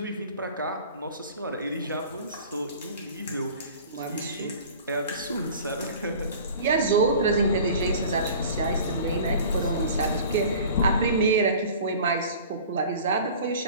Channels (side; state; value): both; inverted; correlation -0.43